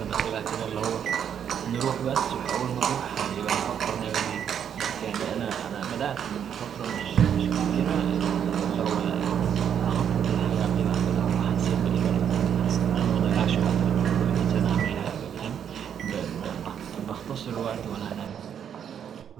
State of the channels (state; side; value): quieter; left; 8.6 dB